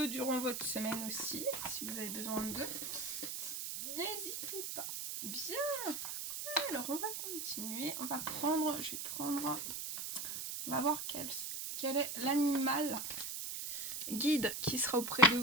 durant votre semaine aussi, si vous avez besoin d'eux. N'hésitez pas. Bien. Alors, on va continuer. On va voir quel est l'animal guide qui sera auprès de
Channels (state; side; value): noise; right; hiss, 4 dB below the sound